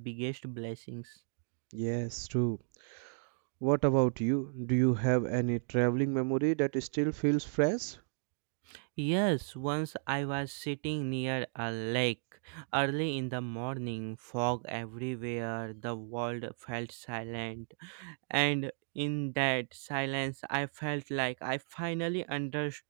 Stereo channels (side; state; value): left; silent; digital silence